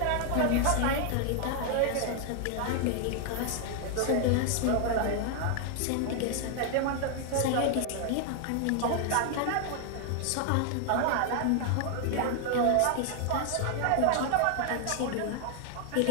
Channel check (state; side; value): different; both; correlation 0.00